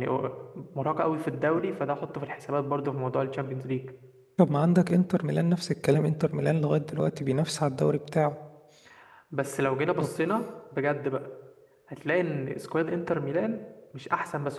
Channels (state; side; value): identical; both; correlation 1.00